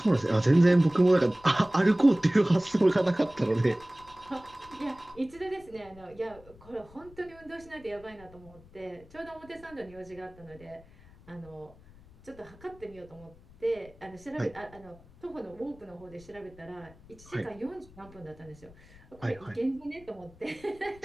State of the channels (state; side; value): noise; left; rumble, 23 dB below the sound